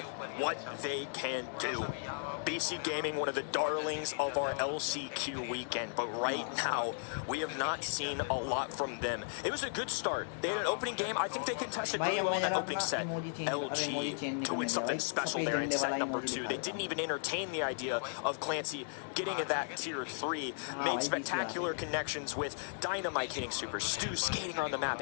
what they can do. BC Gaming, one of the darlings of our LCQ weekend, but right now we have not seen a lot from them. It was a good start. They had an opening game. I think they contested really well in that opening set. LG doing something special there in set number 2. They didn't even entertain the idea of Clancy getting to that tier 3. Made spectacular connections with Dynamite hitting super, Stu skating on the map,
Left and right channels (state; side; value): silent; right; digital silence